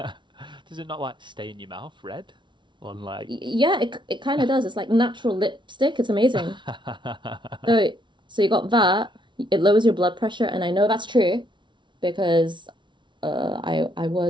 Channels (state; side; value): late; left; 0.23 ms